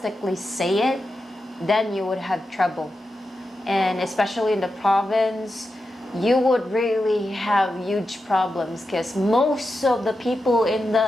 say it, then you would have trouble. And especially in the province, you would really have huge problems because most of the people in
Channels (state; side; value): normal; both; correlation 0.89